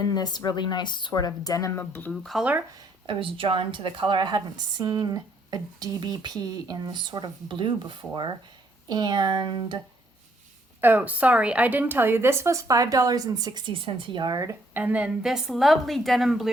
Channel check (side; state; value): both; normal; correlation 0.68